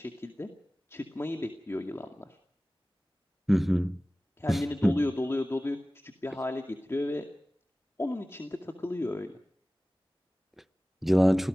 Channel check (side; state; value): both; normal; correlation 0.98